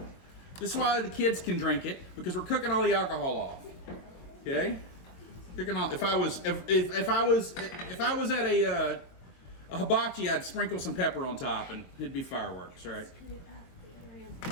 This is why the kids can drink it, because we're cooking all the alcohol off. Okay? Cooking all. If I was at a hibachi, I'd sprinkle some pepper on top, and it'd be fireworks, right?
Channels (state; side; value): late; right; 23 ms